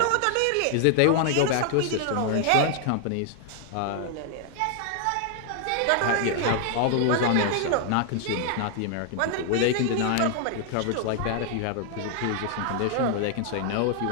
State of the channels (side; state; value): both; different; correlation 0.00